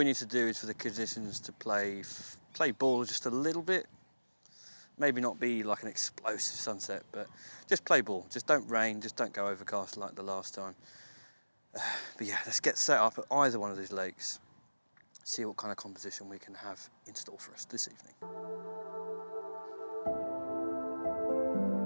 need to do is for the conditions to play ball just a little bit. Maybe not be like an explosive sunset, but just play ball. Just don't rain, just don't go overcast like the last time. But yeah, let's get set up at either one of these lakes. See what kind of composition we can have in store for us this evening.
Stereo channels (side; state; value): both; inverted; correlation -1.00